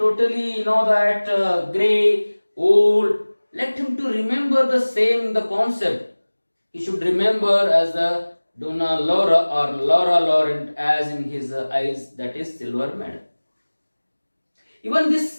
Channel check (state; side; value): inverted; both; correlation -1.00